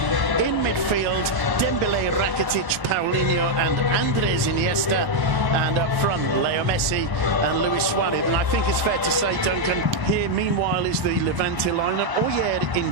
In midfield, Dembele, Rakitic, Paulinho and Andres Iniesta. And up front, Leo Messi and Luis Suarez. And I think it's fair to say, Duncan, here meanwhile is the Levante lineup. Oyer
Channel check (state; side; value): normal; both; correlation 0.00